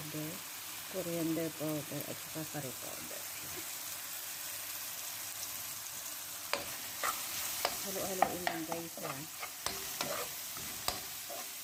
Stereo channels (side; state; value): both; identical; correlation 1.00